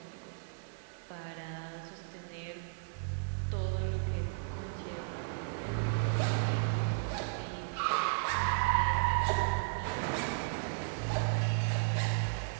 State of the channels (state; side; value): silent; left; digital silence